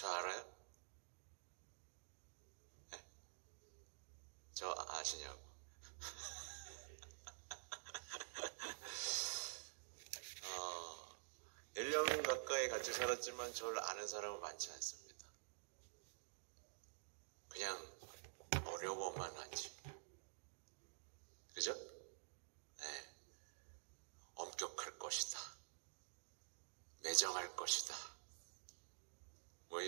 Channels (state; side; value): silent; left; digital silence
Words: 알아요? 네. 저 아시냐고. 1년 가까이 같이 살았지만 저를 아는 사람은 많지 않습니다. 그냥 어려워만 하지. 그죠? 네. 엄격할 것이다. 매정할 것이다. 뭐